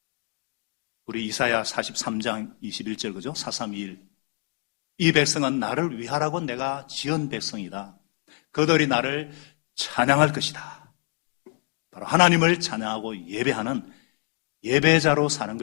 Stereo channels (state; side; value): quieter; right; 36.3 dB